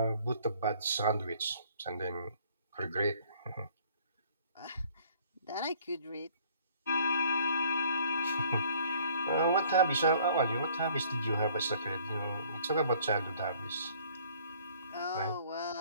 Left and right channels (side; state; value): both; inverted; correlation -0.58